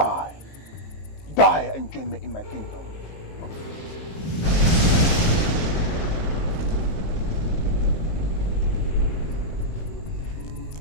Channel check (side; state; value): right; late; 19 ms